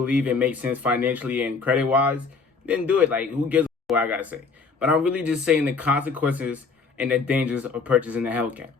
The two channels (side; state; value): right; quieter; 4.7 dB